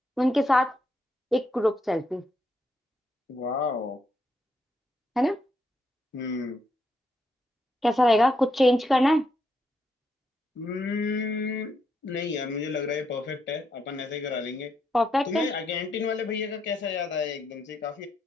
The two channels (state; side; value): normal; both; correlation 0.79